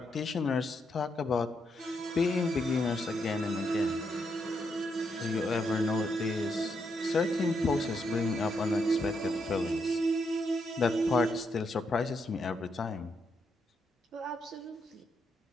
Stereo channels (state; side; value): normal; both; correlation 0.79